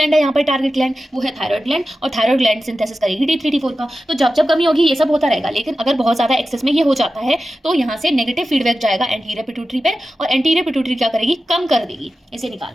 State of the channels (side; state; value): both; normal; correlation 0.93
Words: है यहाँ पर टारगेट ग्लैंड, वो है थायराइड ग्लैंड, और थायराइड ग्लैंड सिंथेसिस करेगी T3 T4 का। तो जब जब कमी होगी ये सब होता रहेगा, लेकिन अगर बहुत ज्यादा एक्सेस में ये हो जाता है तो यहाँ से नेगेटिव फीडबैक जाएगा एंटीरियर पिट्यूटरी पे, और एंटीरियर पिट्यूटरी क्या करेगी, कम कर देगी इसे